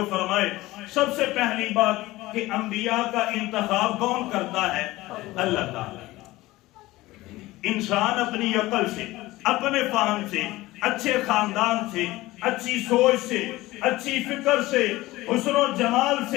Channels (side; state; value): right; quieter; 18.5 dB